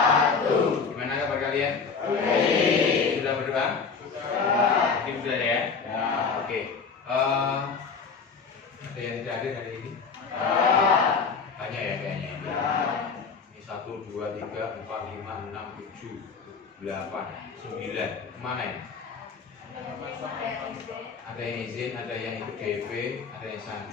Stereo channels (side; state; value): right; quieter; 5.3 dB